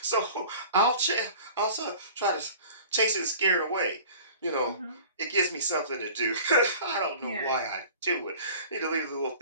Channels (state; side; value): inverted; both; correlation -0.44